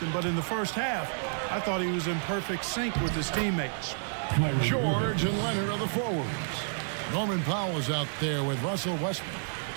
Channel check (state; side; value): silent; left; 58 dB below the other